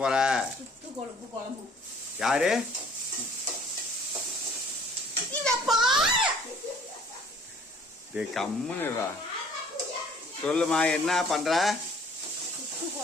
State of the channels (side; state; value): both; normal; correlation 0.54